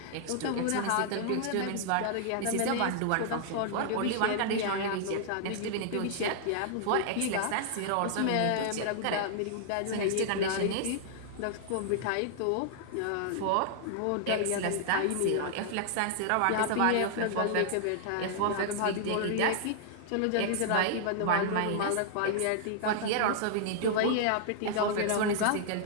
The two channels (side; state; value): both; different; correlation -0.01